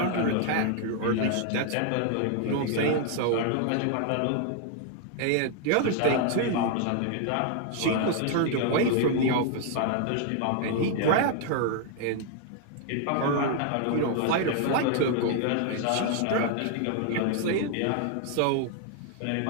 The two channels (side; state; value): both; different; correlation 0.00